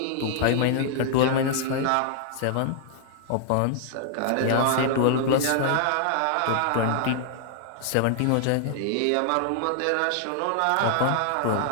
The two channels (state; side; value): different; both; correlation 0.00